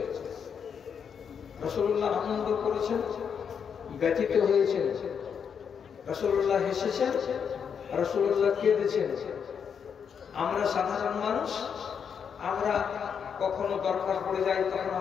রাসূলুল্লাহ আনন্দ করেছেন, ব্যথিত হয়েছেন। রাসূলুল্লাহ হেসেছেন, রাসূলুল্লাহ কেঁদেছেন। আমরা সাধারণ মানুষ, আমরা কখনো দরকার পড়ে যায় তখন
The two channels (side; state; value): right; quieter; 7.1 dB